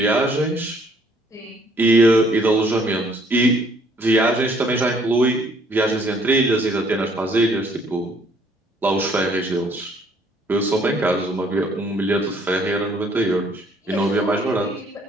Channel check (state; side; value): normal; both; correlation 0.62